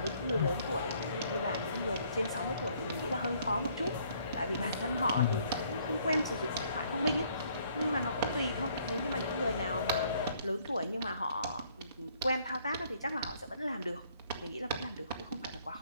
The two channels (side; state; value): both; inverted; correlation -0.64